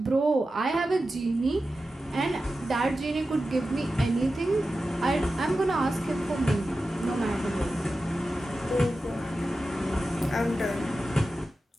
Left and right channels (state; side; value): normal; both; correlation 0.93